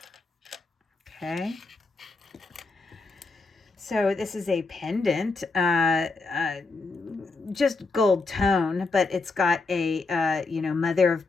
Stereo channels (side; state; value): right; quieter; 3.8 dB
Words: Okay. So this is a pendant, just gold tone, but it's got a, mother